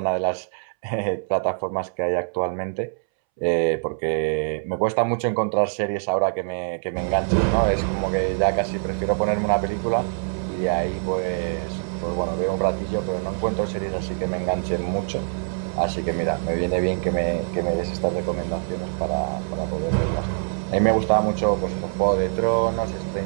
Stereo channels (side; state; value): left; silent; 63 dB below the other